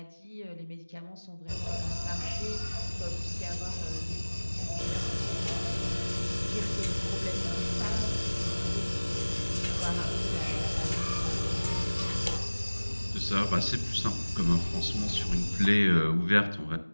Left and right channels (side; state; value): both; inverted; correlation -1.00